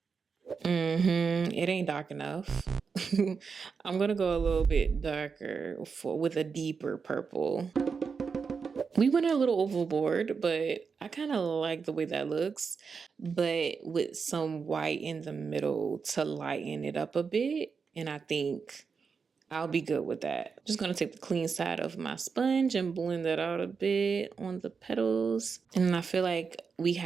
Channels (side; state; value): left; quieter; 5.5 dB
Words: It ain't dark enough. I'm going to go a little bit darker with a deeper purple. We went a little overboard, but I kind of like the way that looks, but with some white in the middle to lighten it up a bit. And I think I'll be good with that. Just going to take the clean side of my sponge and blend that out a bit on the petals. And I feel like we